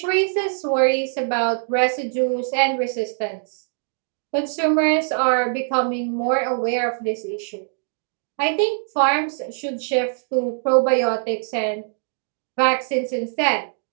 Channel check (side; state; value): left; silent; digital silence